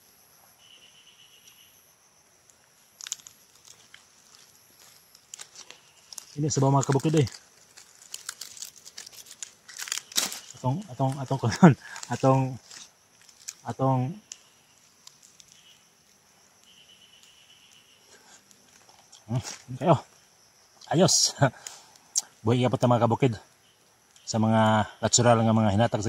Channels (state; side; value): identical; both; correlation 1.00